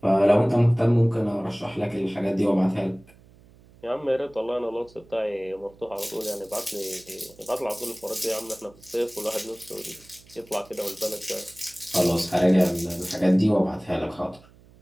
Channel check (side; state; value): right; noise; hum, 26 dB below the sound